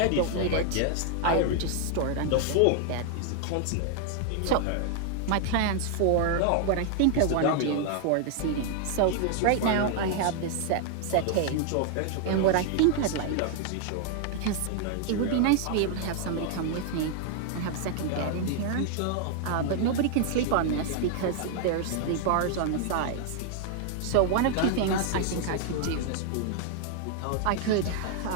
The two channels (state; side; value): different; both; correlation 0.00